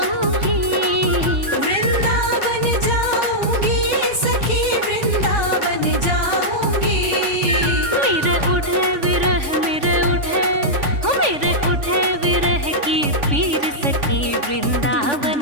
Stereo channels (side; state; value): left; late; 3.5 ms